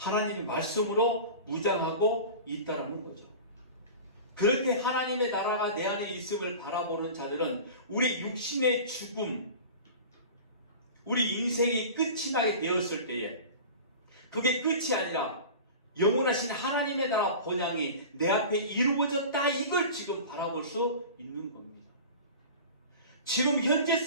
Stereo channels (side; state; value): both; inverted; correlation -0.35